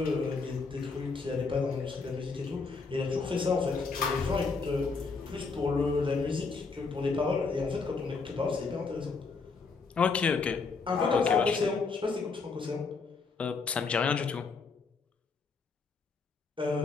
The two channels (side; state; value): right; quieter; 4.5 dB